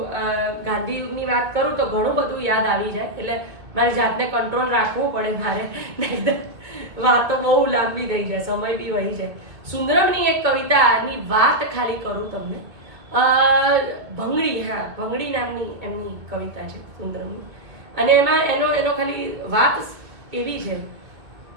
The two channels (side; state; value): left; late; 2.0 ms